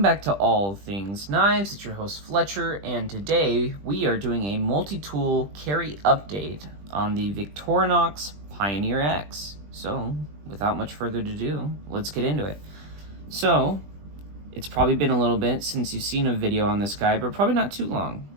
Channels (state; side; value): late; left; 20 ms